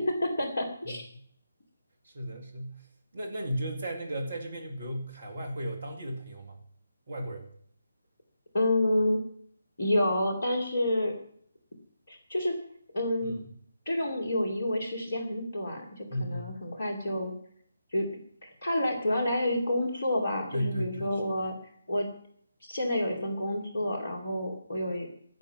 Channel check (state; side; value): inverted; both; correlation -0.86